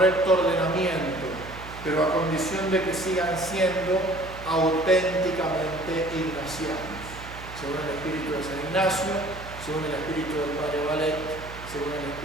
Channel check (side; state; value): right; noise; hum, 14 dB below the sound